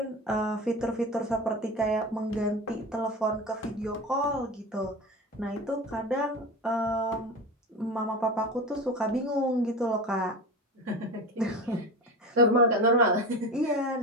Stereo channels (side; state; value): both; normal; correlation 0.28